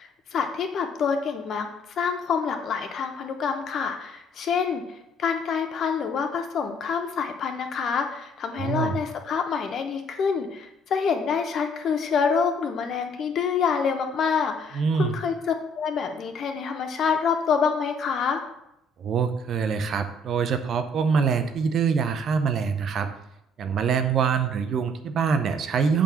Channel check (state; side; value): normal; both; correlation 0.61